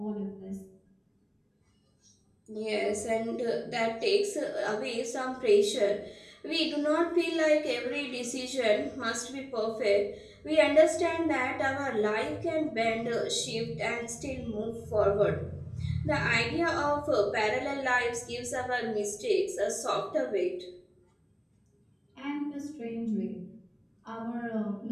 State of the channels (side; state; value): both; identical; correlation 1.00